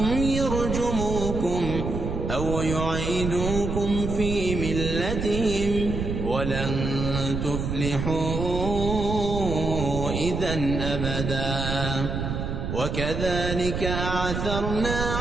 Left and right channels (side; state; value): right; noise; rumble, 3 dB below the sound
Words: يرجموكم أو يعيدوكم في ملتهم ولن تفلحوا إذن أبدا وكذلك أعثرنا